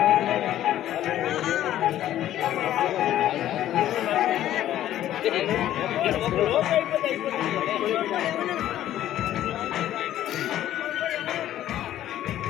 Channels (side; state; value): right; quieter; 12.5 dB